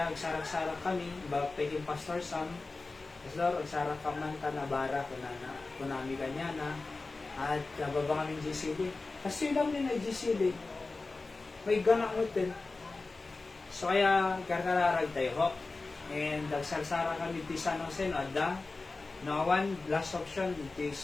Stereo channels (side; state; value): right; quieter; 3.6 dB